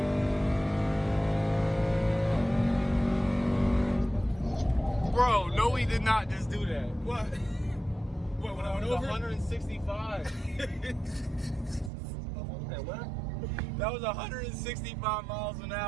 Bro, no, we did not just do that. What? What, when I went over? 165. What? That was 165 miles an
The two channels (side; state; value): left; drops out; at 11.9 s